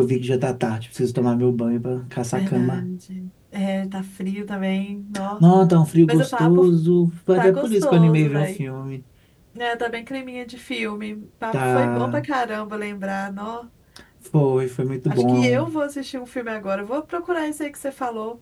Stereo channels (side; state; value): both; identical; correlation 1.00